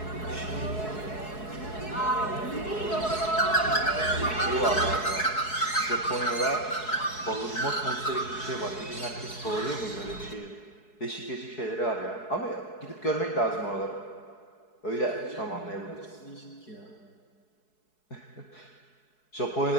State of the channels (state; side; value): late; right; 4.7 ms